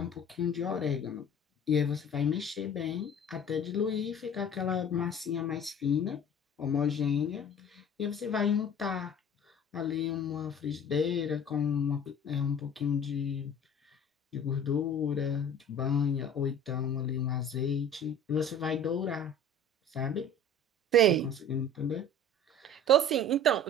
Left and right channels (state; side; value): normal; both; correlation 0.44